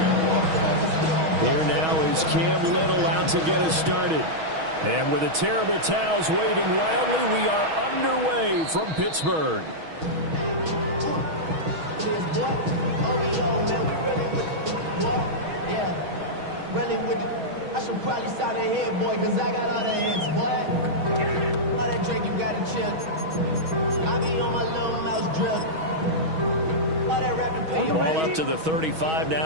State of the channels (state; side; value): late; left; 6.3 ms